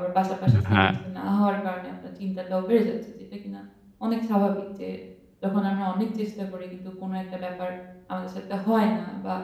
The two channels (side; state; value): both; identical; correlation 1.00